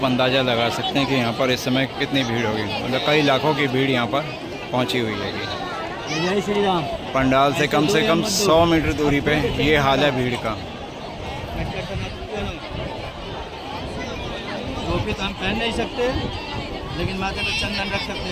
अंदाज़ा लगा सकते हैं कि यहाँ पर इस समय कितनी भीड़ होगी, मतलब कई लाखों की भीड़ यहाँ पर पहुँची हुई है। जय श्री राम। पंडाल से कम 100 मीटर दूरी पे ये हाल है भीड़ का। टोपी तो हम पहन नहीं सकते, लेकिन माथे पे चंदन रख सकते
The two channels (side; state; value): both; identical; correlation 1.00